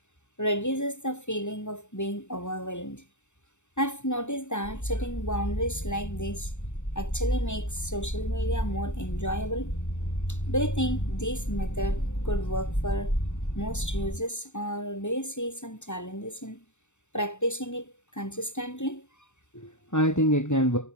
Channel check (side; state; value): right; late; 0.84 ms